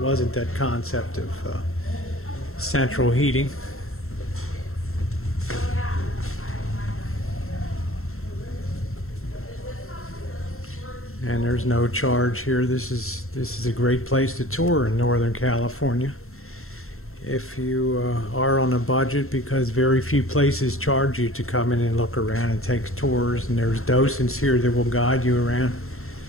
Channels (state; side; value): late; right; 0.62 ms